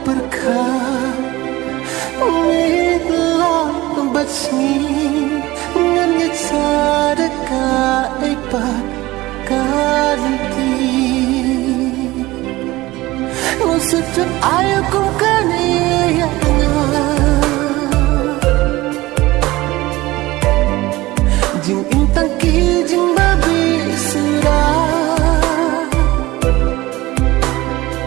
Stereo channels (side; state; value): left; quieter; 19.0 dB